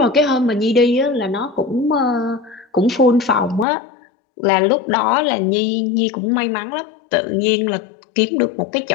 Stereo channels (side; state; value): right; drops out; at 3.7 s